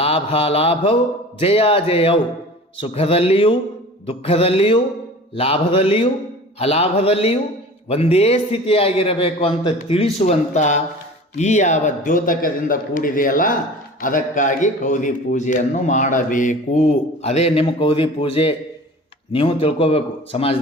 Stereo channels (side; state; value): both; normal; correlation 0.40